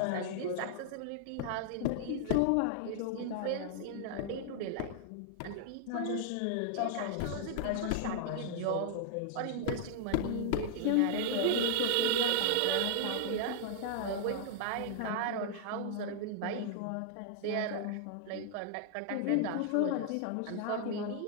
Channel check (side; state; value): both; different; correlation -0.01